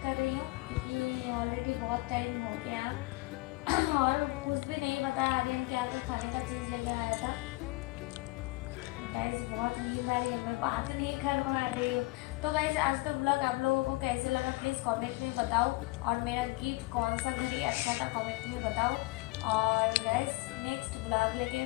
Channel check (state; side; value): quieter; right; 22.9 dB